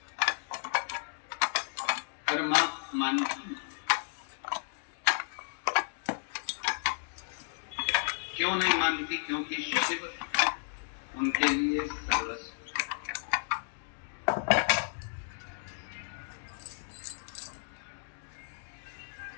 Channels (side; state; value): right; silent; digital silence